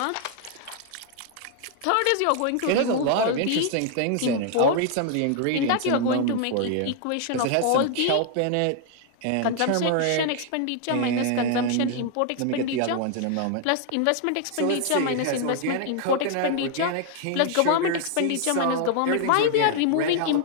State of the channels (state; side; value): different; both; correlation 0.00